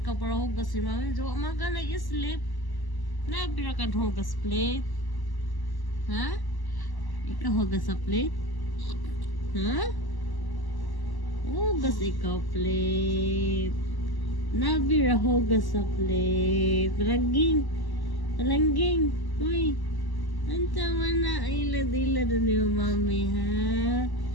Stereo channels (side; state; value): right; late; 1.1 ms